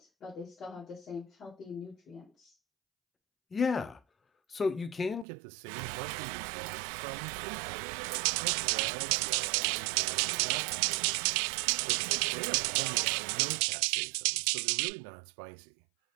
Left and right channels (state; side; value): drops out; left; at 5.2 s